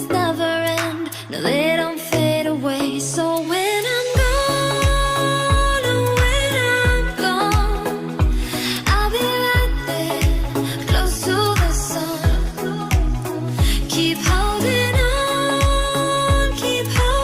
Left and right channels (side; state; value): both; identical; correlation 1.00